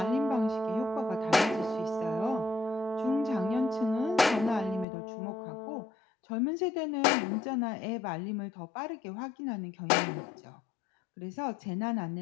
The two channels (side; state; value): right; drops out; at 4.9 s